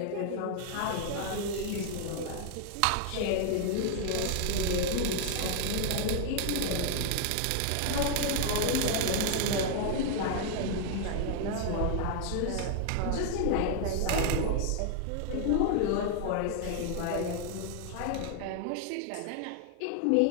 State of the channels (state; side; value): different; both; correlation 0.00